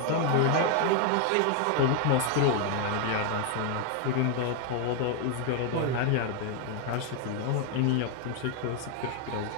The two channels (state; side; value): different; both; correlation 0.00